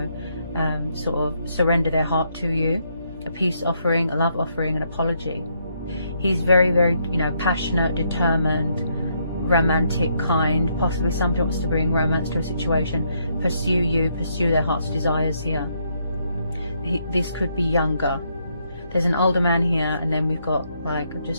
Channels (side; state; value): both; inverted; correlation -0.75